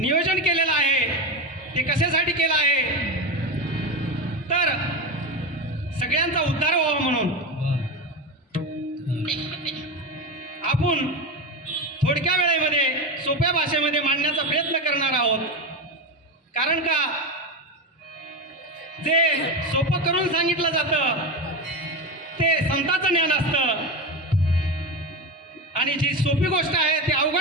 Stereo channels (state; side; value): normal; both; correlation 0.19